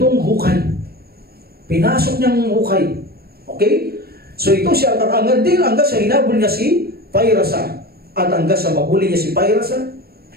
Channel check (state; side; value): late; left; 0.45 ms